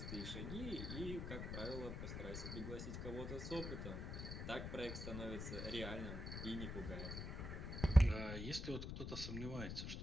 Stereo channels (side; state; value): left; noise; rumble, 5 dB below the sound